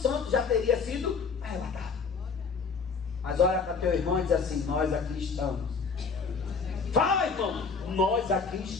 já teria sido arrebatado. Mas olha para teu irmão e diz assim: nós aqui estamos. Fala, irmão, nós aqui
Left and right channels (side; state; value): right; quieter; 5.1 dB